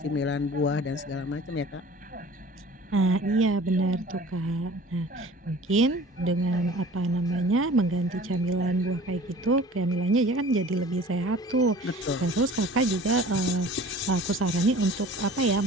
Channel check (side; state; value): both; normal; correlation 0.45